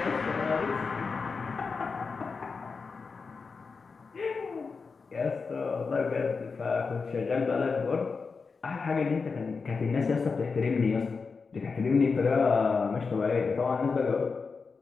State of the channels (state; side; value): quieter; right; 4.8 dB